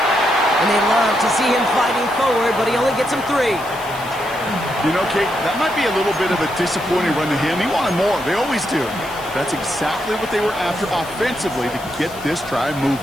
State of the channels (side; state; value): left; noise; hiss, 18 dB below the sound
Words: And they love to see him fighting forward, but he only gets him 3. You know, Kate, that might be a little bit of a disappointing run to him. He wanted more. They always do. That's exactly what they were after offensively to get this drive